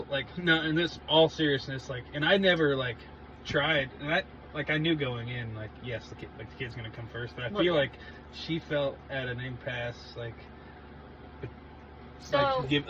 like, no, in this all seriousness, like, and I never, like, tried, and I knew going in, like, yes, the kid's gonna come first, but I Well, feel yeah. like she felt at an impasse, like, So,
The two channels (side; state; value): both; identical; correlation 1.00